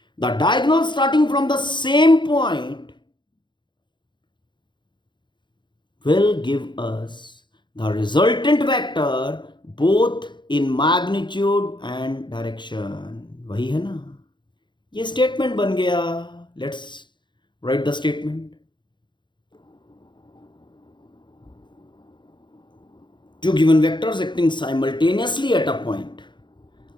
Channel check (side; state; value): right; late; 0.23 ms